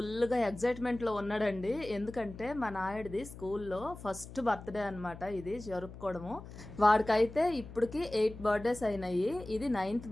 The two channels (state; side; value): noise; left; hum, 14 dB below the sound